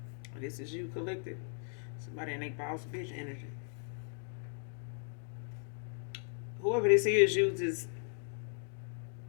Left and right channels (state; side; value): silent; right; 53 dB below the other